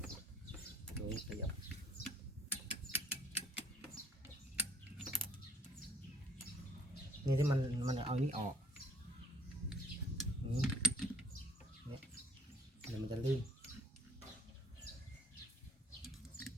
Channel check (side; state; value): both; normal; correlation 0.57